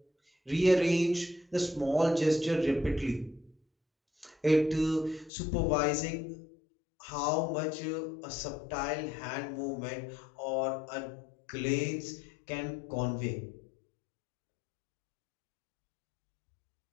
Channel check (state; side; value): drops out; right; at 5.3 s